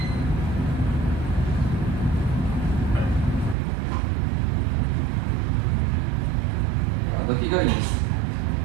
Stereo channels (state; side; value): drops out; left; at 3.6 s